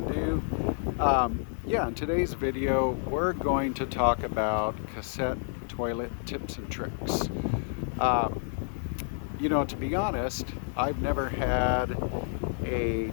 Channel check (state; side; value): silent; right; 58 dB below the other